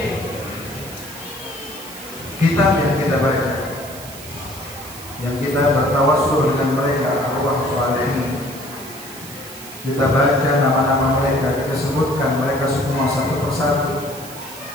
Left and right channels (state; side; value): noise; right; hiss, 15 dB below the sound